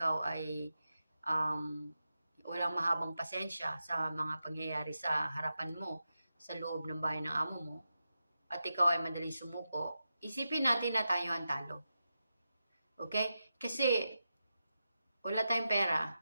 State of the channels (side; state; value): both; inverted; correlation -0.90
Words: ay walang mahabang pasensya sa mga pangyayari sa harapan mo, sa loob ng bahay ng amo mo, at ikaw ay madaling sumuko, isipin natin na tayo ang talo. Okay? Kasi wala tayong pera.